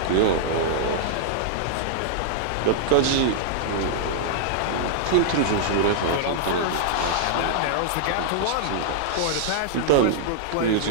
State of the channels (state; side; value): different; both; correlation -0.01